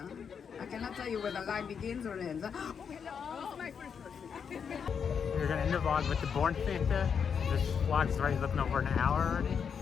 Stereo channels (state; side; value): quieter; right; 6.8 dB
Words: I cannot tell you where the line begins or ends. Huh? Oh, hello. This is my first person. We're gonna end the vlog with the Born Santa. This vlog's already looking over an hour already.